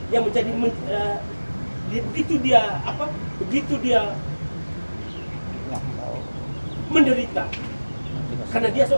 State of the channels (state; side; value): inverted; both; correlation -1.00